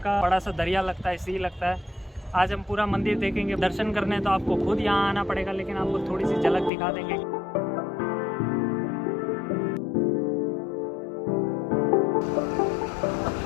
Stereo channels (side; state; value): right; drops out; at 6.7 s